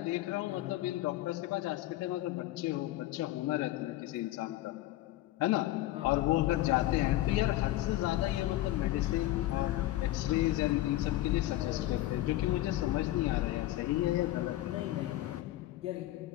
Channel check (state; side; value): quieter; right; 15.8 dB